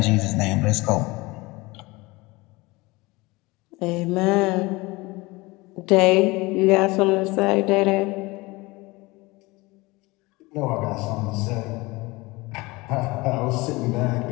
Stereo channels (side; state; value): right; quieter; 22.8 dB